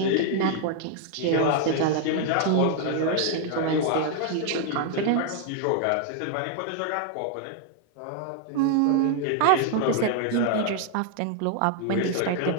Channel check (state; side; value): different; both; correlation 0.00